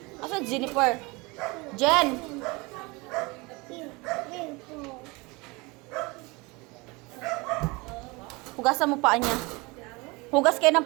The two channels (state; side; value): quieter; left; 25.6 dB